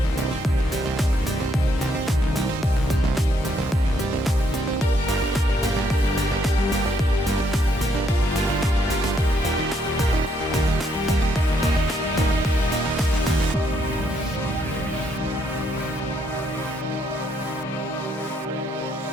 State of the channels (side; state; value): both; normal; correlation 0.73